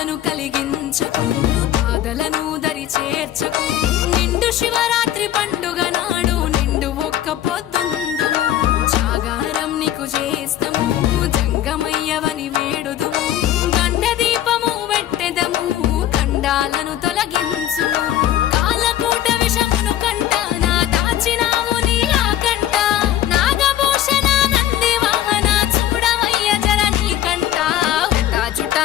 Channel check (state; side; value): quieter; right; 12.2 dB